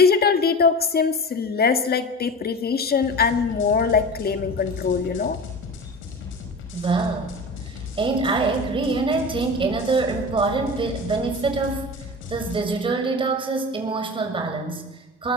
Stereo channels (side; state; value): both; normal; correlation 0.31